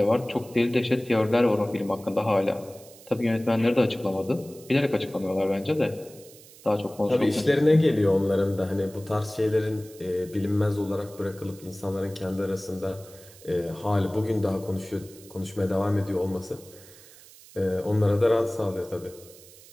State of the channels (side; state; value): right; noise; hiss, 22 dB below the sound